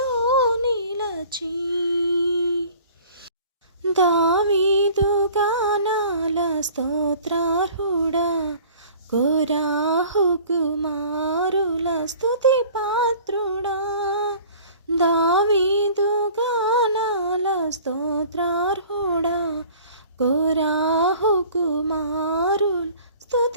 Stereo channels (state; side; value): inverted; both; correlation -0.48